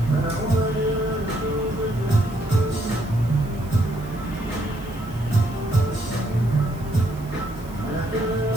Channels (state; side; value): noise; right; hiss, 23 dB below the sound